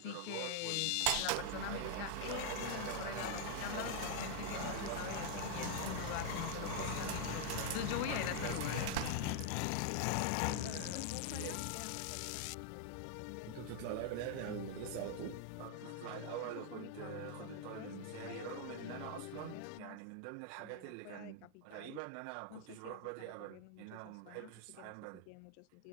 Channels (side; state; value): both; different; correlation 0.00